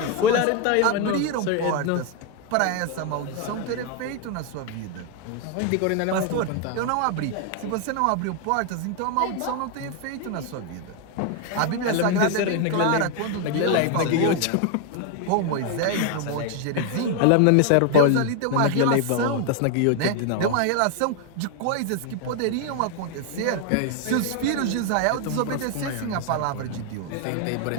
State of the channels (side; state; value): both; different; correlation 0.01